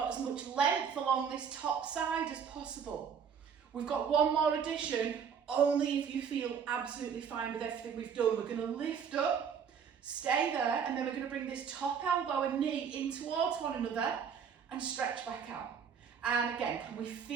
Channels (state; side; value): quieter; left; 7.2 dB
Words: as much length along this top side as possible? We've got 1 more addition, only if you feel absolutely fine with everything we've done. We're going to lift up, stay there, and then we're going to bring this top elbow and knee in towards one another and stretch back out. And again, can we